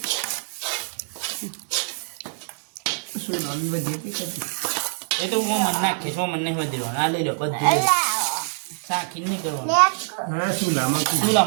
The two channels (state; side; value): silent; left; digital silence